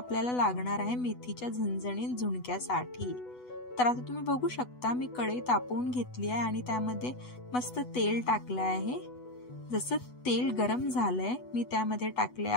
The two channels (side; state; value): right; late; 8.1 ms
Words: लागणार आहे मेथीच्या झणझणीत झुणक्यासाठी। तर आता तुम्ही बघू शकता, मी कढई तापवून घेतली आहे आणि त्यामध्ये मस्त तेल टाकलं आहे। जसं तेल गरम झालंय, मी त्यामध्ये टाकले